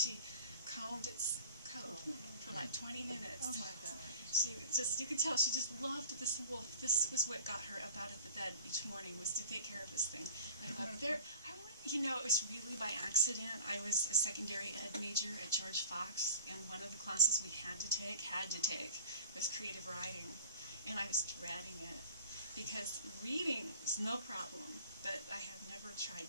combed its coat for like 20 minutes. Oh my God. She just, you could tell she just loved this wolf. This was what got her up out of the bed each morning, was to take care of this thing. And I thought, you know, it was really by accident. I was a secondary ed major at George Fox, and one of the classes we had to take was creative writing. And I was dreading it, because reading is no problem, but I have never tried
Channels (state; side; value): inverted; both; correlation -0.42